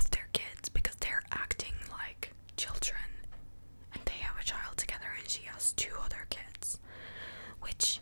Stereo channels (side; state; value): both; inverted; correlation -1.00